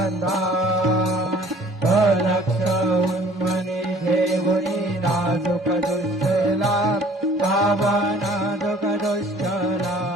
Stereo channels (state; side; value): normal; both; correlation 0.53